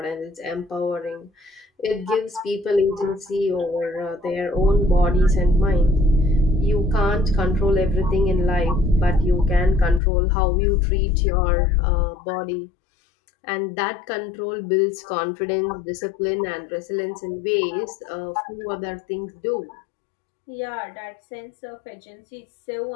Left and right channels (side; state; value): right; drops out; at 10.0 s